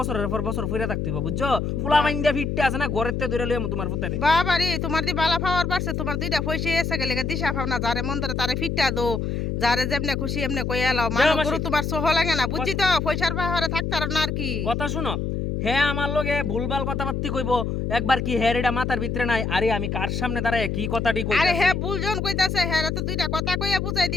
পর বছর ফিরে থাকতে হবে, বুঝছো? ফুলা মাইন্ডা ফিটতে আছে না, ঘরেতে ধরে লইয়াম তোমার পুতারে। বাবা রে, তোমার দি বালা পাওয়ার পারছে, তোমার দুইটা পয়সা এসে গেলে দিশা পাও না, যারে মন ধরে তারে ফিটটা দো, যারে যেমনে খুশি এমনে কই এলাও। মানুষ গরু তোমার সহ লাগে না, বুঝছি তো? পয়সার পাহাড়ে থাকতে আর না আর কি। কথা শুনো, হ্যাঁ আমার লগে ভুলভাল কথাবার্তি কইবো, একবার কি হ্যাঁ এটা মাথার ভিতরে নাই? আরে আমি কার সামনে দাঁড়ায় কি কথাটি কইতাছি? আরে হ্যাঁ বুলজন কইতাছে, হ্যাঁ তো দুইটা কথা কইয়া বুঝাই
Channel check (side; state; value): left; noise; hum, 1 dB below the sound